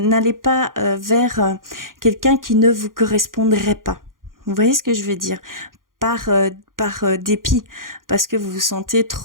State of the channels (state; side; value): late; left; 0.90 ms